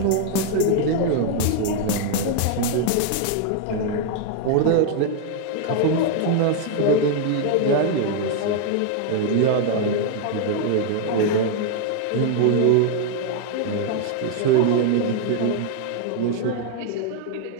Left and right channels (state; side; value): different; both; correlation 0.00